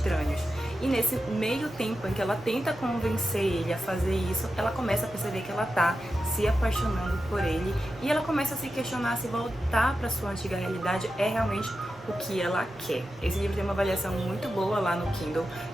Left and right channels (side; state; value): both; normal; correlation 0.90